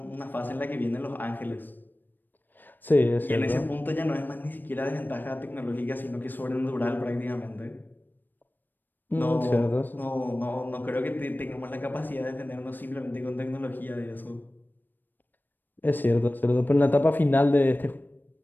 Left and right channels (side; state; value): right; late; 0.091 ms